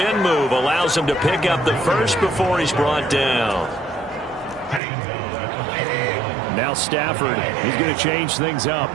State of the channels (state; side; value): drops out; left; at 4.8 s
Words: move allows him to pick up the first before he's brought down. Now Stafford. He's going to change things up.